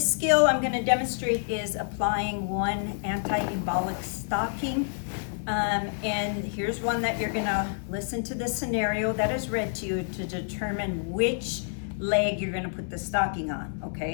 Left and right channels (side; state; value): right; silent; digital silence